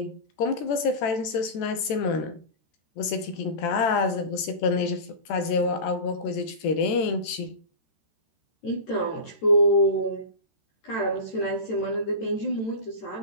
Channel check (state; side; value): late; right; 13 ms